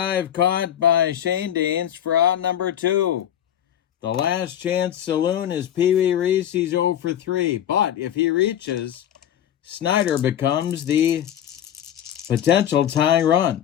caught by Shane Daines for out number 2. The last chance saloon is Pee Wee Reese. He's 0 for 3. But if he reaches, Snyder becomes the potential tying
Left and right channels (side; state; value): right; quieter; 10.4 dB